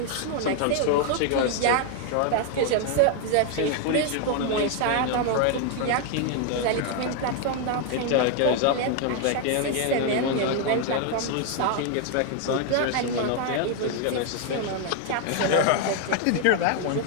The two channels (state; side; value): different; both; correlation 0.00